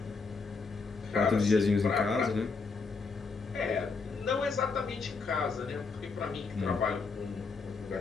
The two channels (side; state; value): right; quieter; 4.5 dB